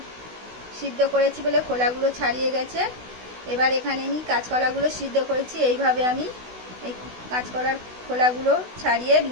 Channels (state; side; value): late; left; 16 ms